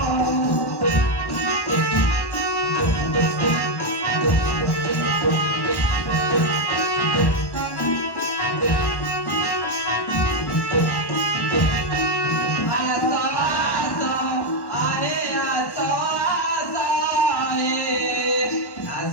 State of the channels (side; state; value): right; late; 1.1 ms